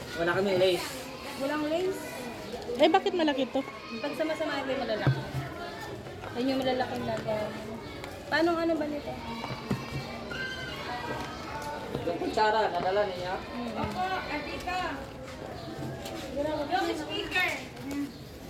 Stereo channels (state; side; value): identical; both; correlation 1.00